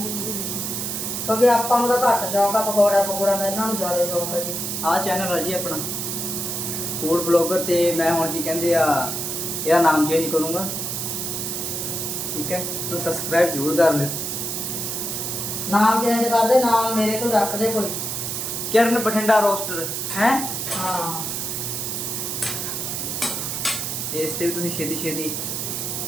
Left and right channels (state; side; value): noise; right; hiss, 3 dB below the sound